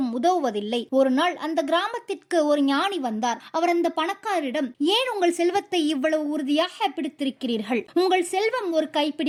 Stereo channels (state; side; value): identical; both; correlation 1.00